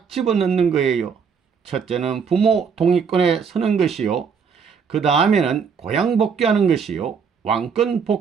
집어넣는 거예요. 첫째는 부모 동의권에 서는 것이요. 그 다음에는 고향 복귀하는 것이요. 왕권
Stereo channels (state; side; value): quieter; left; 6.4 dB